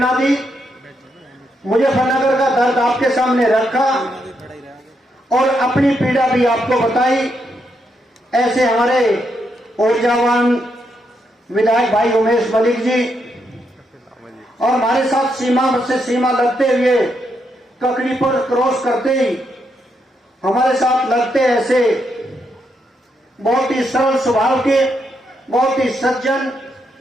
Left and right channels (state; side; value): normal; both; correlation 0.80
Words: दी। मुजफ्फरनगर का दर्द आपके सामने रखा और अपनी पीड़ा भी आपको बताई। ऐसे हमारे ऊर्जावान विधायक भाई उमेश मलिक जी और हमारे साथ सीमा से सीमा लगते हुए ककड़ी पर क्रॉस करते ही हमारे साथ लगते ऐसे बहुत ही सरल स्वभाव के, बहुत ही सज्जन,